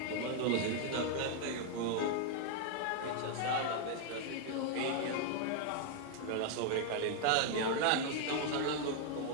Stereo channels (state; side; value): different; both; correlation 0.00